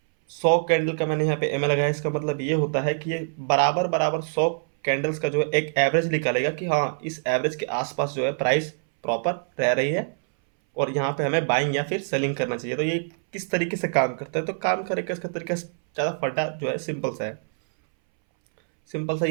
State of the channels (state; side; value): silent; left; 62 dB below the other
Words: 100 कैंडल का मैंने यहाँ पे एम ए लगाया। इसका मतलब ये होता है कि ये बराबर बराबर 100 कैंडल्स का जो है एक एवरेज निकालेगा कि हाँ इस एवरेज के आसपास जो है प्राइस प्रॉपर रह रही है और यहाँ पे हमें बाइंग या फिर सेलिंग करना चाहिए। तो ये किस तरीके से काम करता है, तो काम करेगा इसका तरीका ज़्यादा फटा जो है सिंपल सा है। सिंपल सा